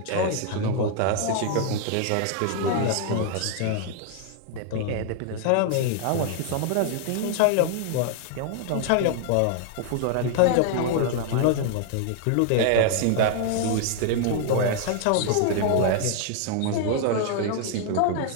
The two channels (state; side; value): different; both; correlation 0.00